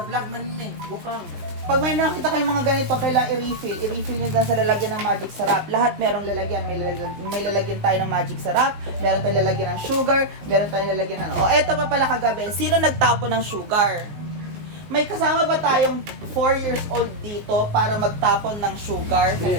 man may. Bukang. Pag may nakita kayong mga ganito, kailangan i-refill. I-refill nyo dyan sa lalagyan ng magic syrup. Lahat merong lalagyan. May lalagyan tayo ng magic syrup, meron tayong lalagyan ng sugar, meron tayong lalagyan ng... eto pa pala kagabi. Sino nagtapo ng sugar? May kasama ba tayong 4 years old dito para magtapon ng sugar sa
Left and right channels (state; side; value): late; left; 19 ms